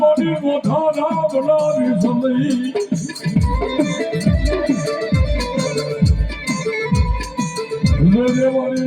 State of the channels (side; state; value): both; identical; correlation 1.00